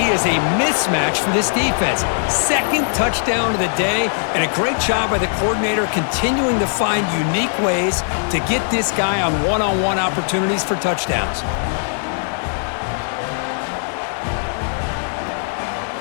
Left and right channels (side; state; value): right; silent; 66 dB below the other